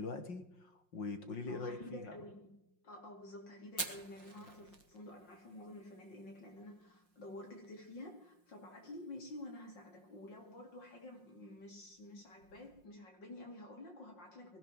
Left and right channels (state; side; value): late; right; 5.6 ms